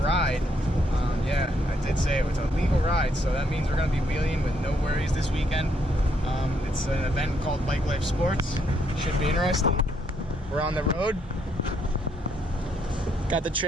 Yeah, I did say it was a legal ride, so that means we're gonna be wheeling with no worries this weekend. It's an event called Bike Life Sports. Should be interesting. We're on the road. Got the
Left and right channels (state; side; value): normal; both; correlation 0.73